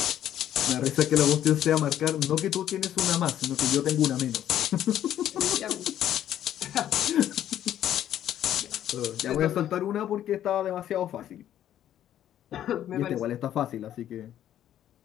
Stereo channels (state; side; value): quieter; right; 11.3 dB